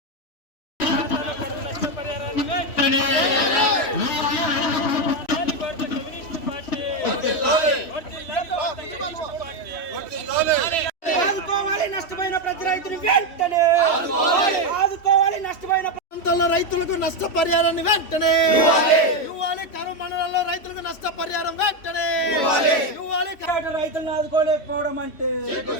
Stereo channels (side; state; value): right; late; 3.1 ms